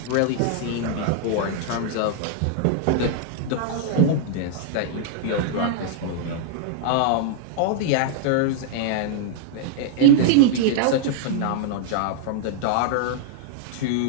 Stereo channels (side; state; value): both; different; correlation -0.01